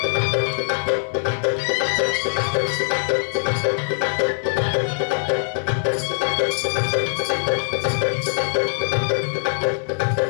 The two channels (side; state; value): right; silent; digital silence